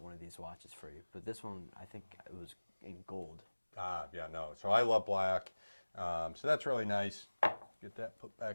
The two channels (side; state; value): both; inverted; correlation -1.00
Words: one of these watches for you, but this one, I think it was in gold. Yeah, no. So I love black. So that's really nice. Get that put